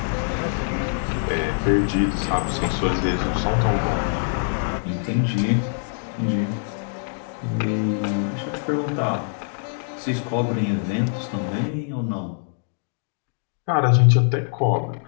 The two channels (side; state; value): right; silent; digital silence